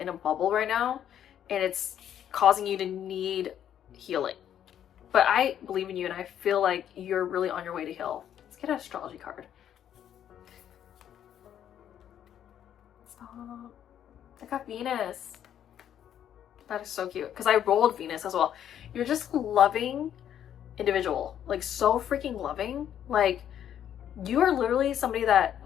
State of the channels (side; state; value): right; quieter; 10.1 dB